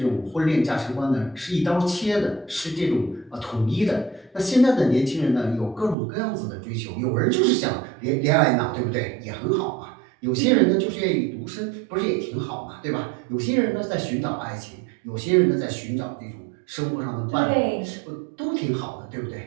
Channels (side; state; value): left; drops out; at 6.0 s